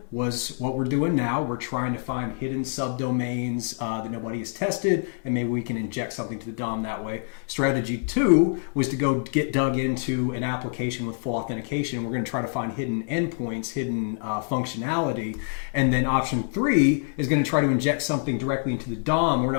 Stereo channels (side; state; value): right; silent; 56 dB below the other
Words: was what we're doing now. We're trying to find hidden subdomains that nobody has tested, and maybe we can inject something to the DOM that way. Strategy two was to go get dug into an application with full authentication. We're going to try to find hidden endpoints, hidden functionality. And then option three is going to try to inject something directly into the DOM. We're